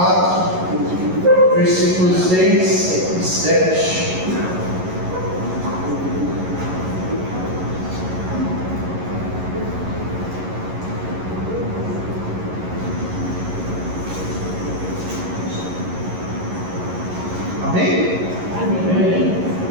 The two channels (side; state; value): left; late; 11 ms